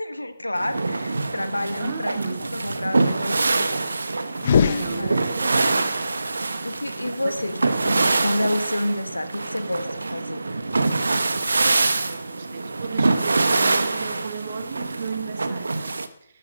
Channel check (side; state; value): both; inverted; correlation -0.92